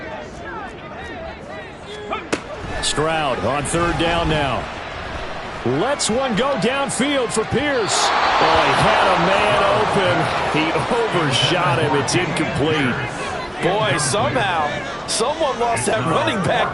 Stroud on 3rd down now. Lets one go downfield for Pierce. Oh, he had a man open. He overshot him. It's incomplete. Boy, somehow, someone lost that running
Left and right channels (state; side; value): identical; both; correlation 1.00